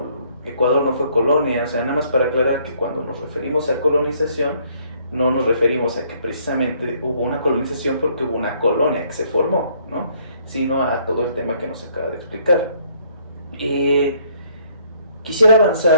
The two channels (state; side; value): inverted; both; correlation -0.64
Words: Ecuador no fue colonia. O sea, nada más para aclarar que cuando nos referimos a colonización no nos referimos a que precisamente hubo una colonización porque hubo una colonia que se formó, ¿no? Sino a todo el tema que nos acaba de explicar. Quisiera